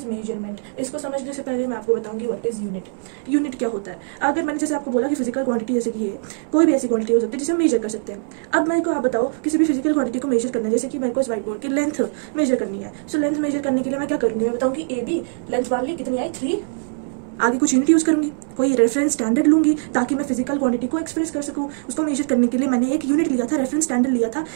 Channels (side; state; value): left; silent; 64 dB below the other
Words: measurement? इसको समझने से पहले मैं आपको बताऊंगी व्हाट इज यूनिट। यूनिट क्या होता है? अगर मैंने जैसे आपको बोला कि फिजिकल क्वांटिटी जैसे कि ये कोई भी ऐसी क्वांटिटी हो सकती है जिसे हम मेजर कर सकते हैं। अब मेरे को आप बताओ, किसी भी फिजिकल क्वांटिटी को मेजर करना है, जैसे कि मेरे को इस व्हाइट बोर्ड की लेंथ मेजर करनी है। सो लेंथ मेजर करने के लिए मैं क्या करूंगी? मैं बताऊंगी ए बी, लेंथ मान ली कितनी आई 3, आगे कुछ यूनिट यूज करूंगी, कोई रेफरेंस स्टैंडर्ड लूंगी ताकि मैं फिजिकल क्वांटिटी को एक्सप्रेस कर सकूं। उसको मेजर करने के लिए मैंने एक यूनिट लिया था, रेफरेंस स्टैंडर्ड लिया था।